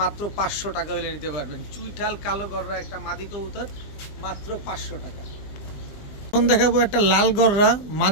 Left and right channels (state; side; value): late; right; 20 ms